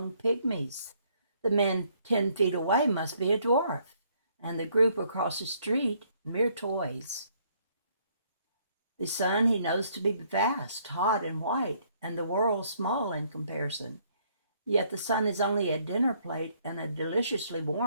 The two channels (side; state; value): both; inverted; correlation -0.67